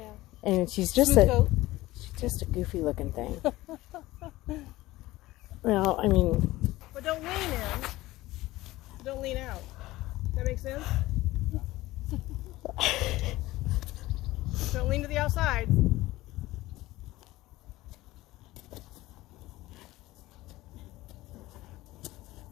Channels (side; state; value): right; quieter; 17.8 dB